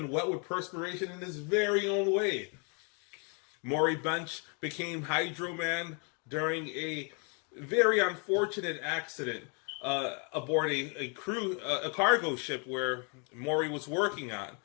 wet with perspiration in his very own way. Maury Bench became Hydra Man during a very unfortunate accident aboard a cargo ship where Maury was working on.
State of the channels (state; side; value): quieter; right; 37.1 dB